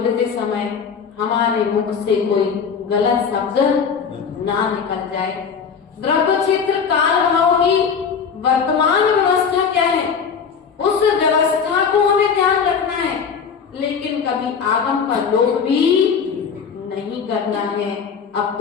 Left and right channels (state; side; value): quieter; right; 6.4 dB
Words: समय हमारे मुख से कोई गलत शब्द ना निकल जाए। द्रव्य क्षेत्र काल भाव की वर्तमान व्यवस्था क्या है, उस व्यवस्था को हमें ध्यान रखना है, लेकिन कभी आगम का लोभ भी नहीं करना है। अब